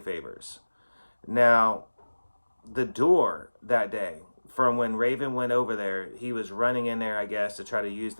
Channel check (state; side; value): inverted; both; correlation -1.00